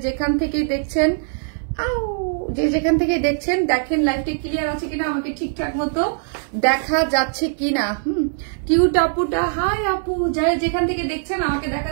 যেখান থেকে দেখছেন দেখেন লাইভটা ক্লিয়ার আছে কিনা, আমাকে ঠিকঠাক মতো দেখা যাচ্ছে কিনা। কিউট আপুটা হাই আপু, যারা যেখান থেকে দেখছেন আমাকে দেখা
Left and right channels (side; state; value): left; silent; digital silence